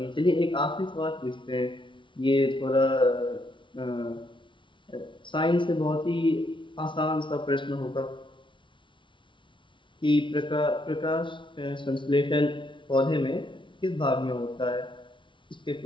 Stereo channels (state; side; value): late; right; 0.24 ms